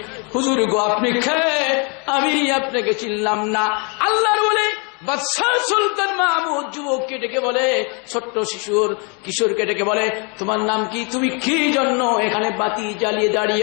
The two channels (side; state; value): right; quieter; 34.4 dB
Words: হুজুর গো আপনি খেয়ে আমি আপনাকে চিনলাম না। আল্লাহর বলে বাদশাহ সুলতান মাহমুদ যুবককে ডেকে বলে, ছোট্ট কিশোরকে ডেকে বলে, তোমার নাম কি, তুমি কি জন্য এখানে বাতি জ্বালিয়ে